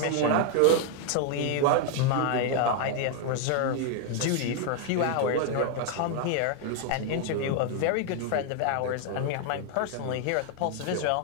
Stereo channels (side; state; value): both; different; correlation 0.00